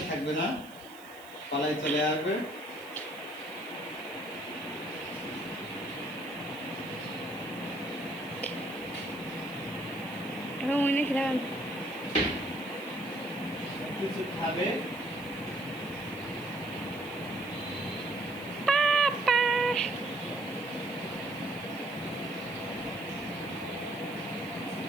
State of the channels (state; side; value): noise; right; hiss, 21 dB below the sound